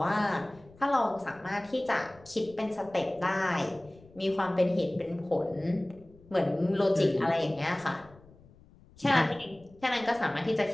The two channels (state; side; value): noise; left; rumble, 25 dB below the sound